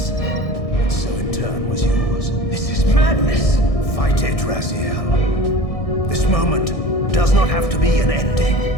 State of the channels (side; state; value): right; late; 1.6 ms